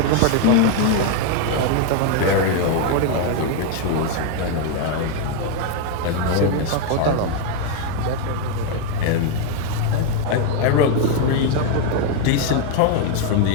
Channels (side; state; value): both; different; correlation 0.01